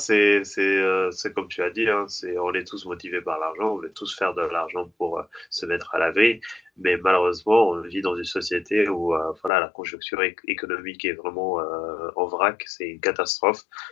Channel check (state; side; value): drops out; right; at 9.5 s